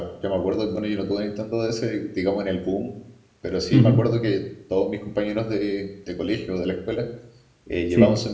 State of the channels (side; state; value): both; identical; correlation 1.00